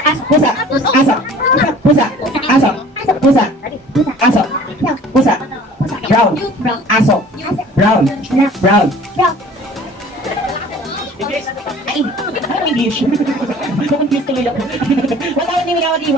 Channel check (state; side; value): normal; both; correlation 0.48